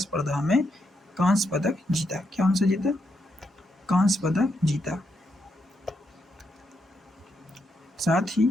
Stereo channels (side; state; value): both; normal; correlation 0.81